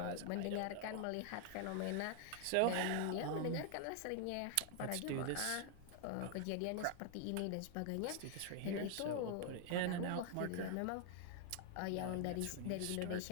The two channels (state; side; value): different; both; correlation 0.00